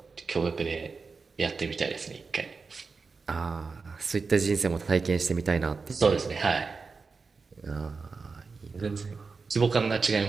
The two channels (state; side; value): quieter; left; 4.6 dB